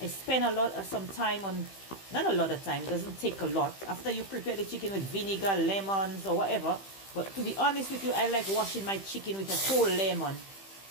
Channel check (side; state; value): right; late; 15 ms